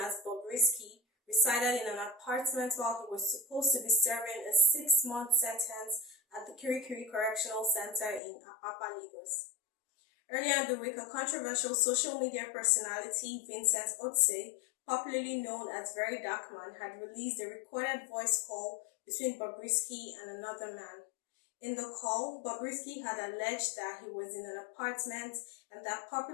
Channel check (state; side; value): drops out; right; at 8.2 s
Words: as Bobrisky, resided in an apartment while he was supposed to be serving a 6-month sentence at the Kirikiri Correctional Center in Apapa, Lagos. Earlier in the week, a controversial social media personality, Vincent Otse, popularly known as VeryDarkMan, had released a recorded voice call between Bobrisky and another man. In the call, Bobrisky had alleged that he was in an apartment and that